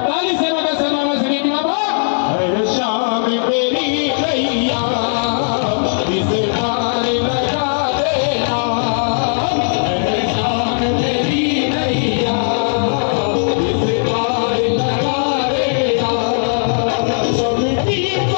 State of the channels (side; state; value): right; silent; digital silence